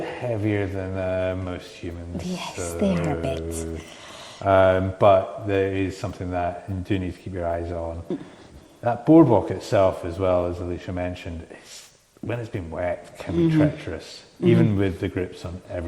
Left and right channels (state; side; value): identical; both; correlation 1.00